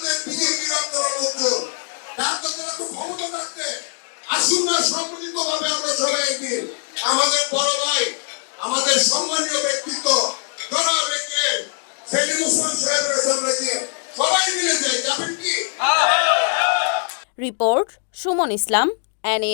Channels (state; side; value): silent; right; digital silence